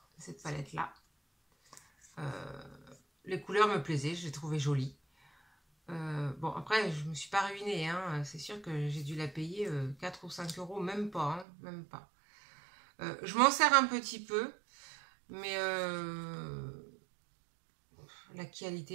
Cette palette-là. Les couleurs me plaisaient, je les trouvais jolies. Bon, après, je me suis pas ruinée, hein. C'est sûr que j'ai dû la payer 4 ou 5 €, même pas, hein, même pas. Je m'en sers un petit peu, mais la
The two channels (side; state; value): left; drops out; at 11.5 s